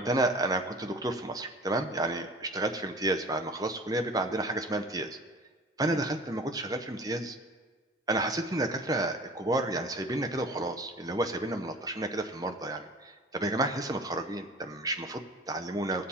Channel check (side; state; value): both; normal; correlation 0.43